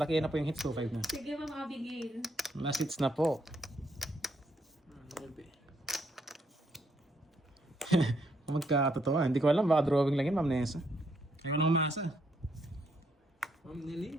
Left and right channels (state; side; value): normal; both; correlation 0.74